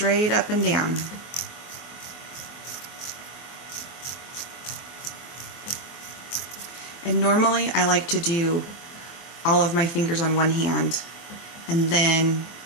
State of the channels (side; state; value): right; late; 24 ms